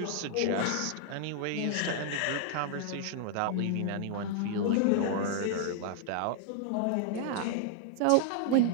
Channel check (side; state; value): both; different; correlation 0.00